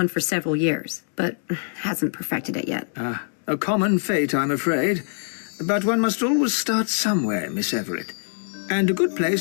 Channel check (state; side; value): silent; right; digital silence